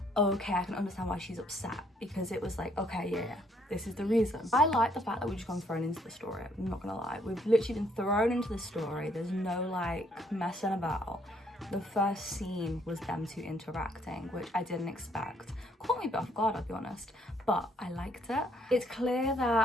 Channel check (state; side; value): normal; both; correlation 0.67